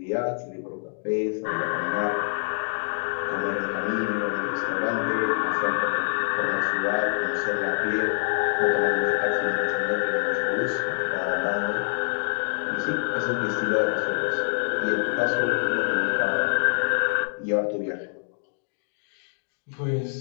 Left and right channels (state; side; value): silent; right; digital silence